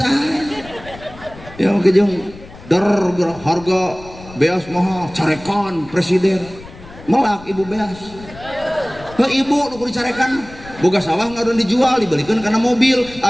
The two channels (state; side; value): noise; left; rumble, 18 dB below the sound